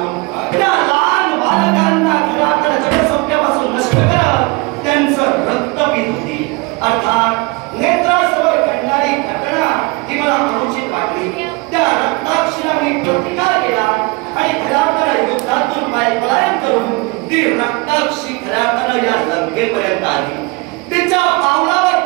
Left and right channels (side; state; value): left; quieter; 26.7 dB